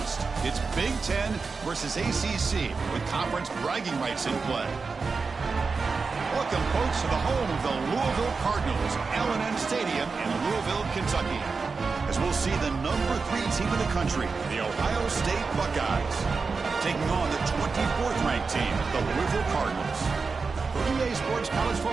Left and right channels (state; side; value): quieter; left; 4.6 dB